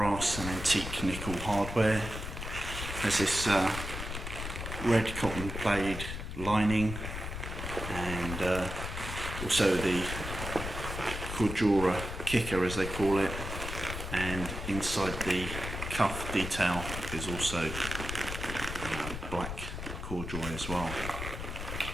and antique nickel hardware. There's this red cotton plaid lining, and also the Cordura kicker as they call it, and inside the cuff detail is also black corduroy as well.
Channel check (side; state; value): left; noise; rumble, 6 dB below the sound